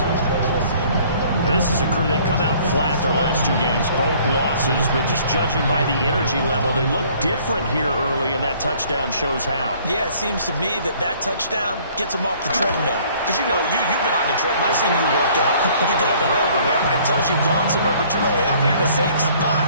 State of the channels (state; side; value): inverted; both; correlation -0.57